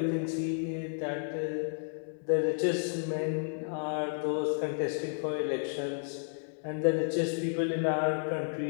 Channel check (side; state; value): right; silent; digital silence